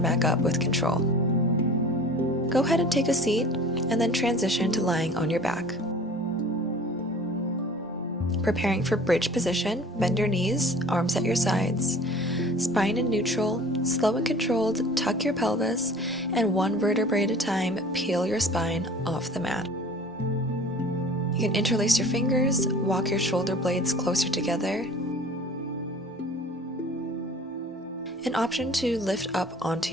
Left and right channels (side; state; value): both; normal; correlation 0.45